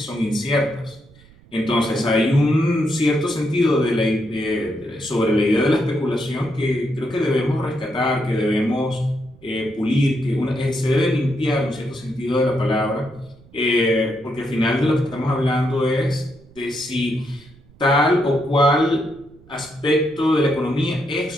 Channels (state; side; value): noise; right; rumble, 26 dB below the sound